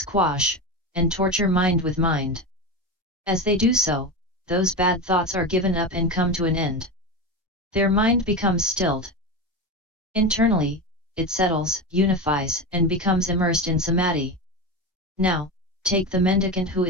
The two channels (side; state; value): both; normal; correlation 0.20